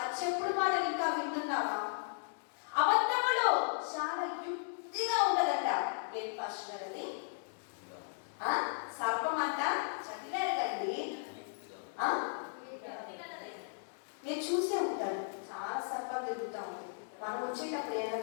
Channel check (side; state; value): right; silent; digital silence